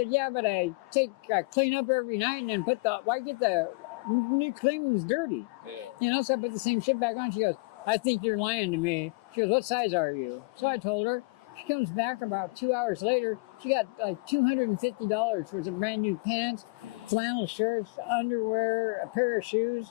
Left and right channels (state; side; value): quieter; right; 29.1 dB